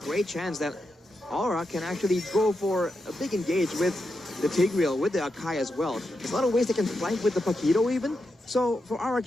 chance that Aura can actually go for a big engage with the Tigreal, with the Akai as well. There's a lot of ways they can flank with the Paquito even. So for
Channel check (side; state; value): both; normal; correlation 0.86